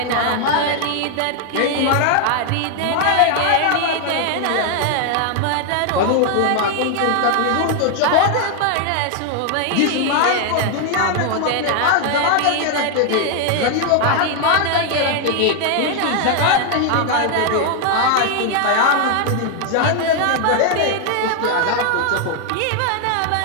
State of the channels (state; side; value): different; both; correlation 0.00